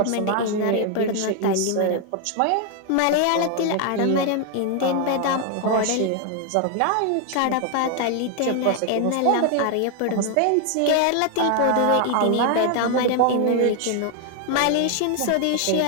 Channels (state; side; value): different; both; correlation 0.00